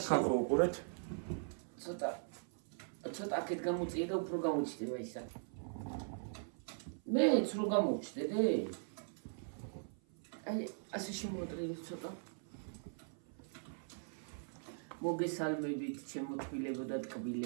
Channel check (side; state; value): left; silent; 51 dB below the other